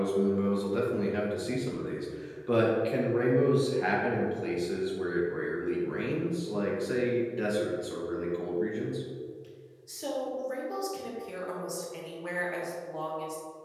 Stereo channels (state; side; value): identical; both; correlation 1.00